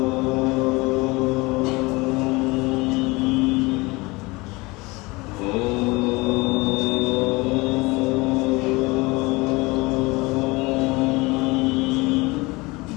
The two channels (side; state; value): right; quieter; 23.8 dB